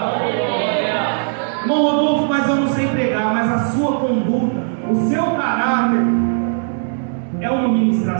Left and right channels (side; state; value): left; silent; 64 dB below the other